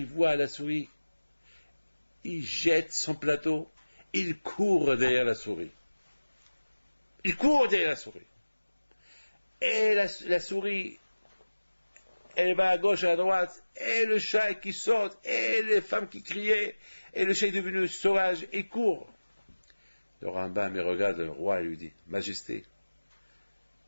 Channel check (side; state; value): both; inverted; correlation -1.00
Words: voit la souris, il jette son plateau, il court derrière la souris. Il court derrière la souris. Et la souris, elle va à gauche, à droite, et le chat qui saute, et les femmes qui criaient, et le chat est devenu sauvage, il court. Le Rambam, il regarde le roi et lui dit, Majesté,